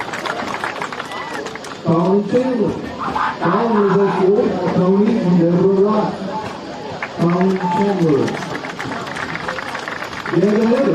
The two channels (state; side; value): identical; both; correlation 1.00